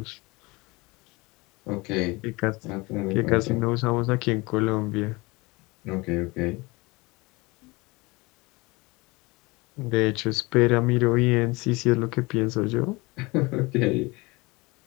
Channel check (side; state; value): right; quieter; 24.2 dB